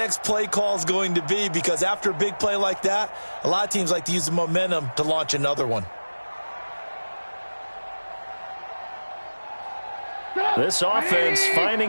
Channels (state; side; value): inverted; both; correlation -1.00